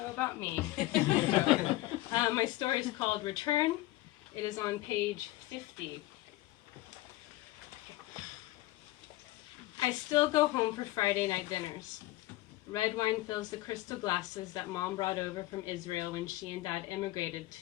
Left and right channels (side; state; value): right; quieter; 17.7 dB